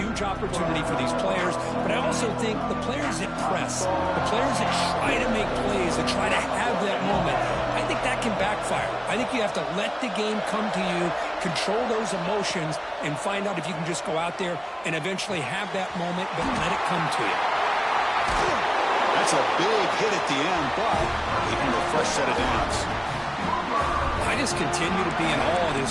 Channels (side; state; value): both; identical; correlation 1.00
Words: opportunity for these players, but I also think the players that press, the players that try to make plays, that try to have that moment, I think that can backfire. I think you have to let the game come to you, control those emotions, and find out if you can just go out there and eventually have that moment, but let it come to you. That's a big hit at the end, but even a fresh set of downs. I just continue to be in awe of